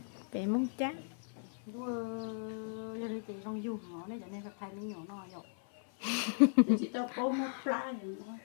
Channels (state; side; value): silent; right; 53 dB below the other